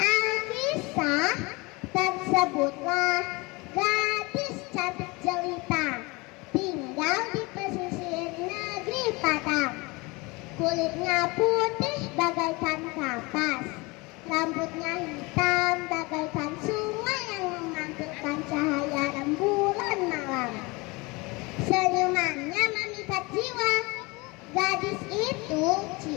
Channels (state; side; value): quieter; right; 25.2 dB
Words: tersebutlah gadis cantik jelita, tinggal di pesisir negeri Padang. Kulitnya putih bagaikan kapas, rambutnya hitam bagaikan sungai yang memantulkan cahaya rembulan malam. Senyumannya memikat jiwa. Gadis itu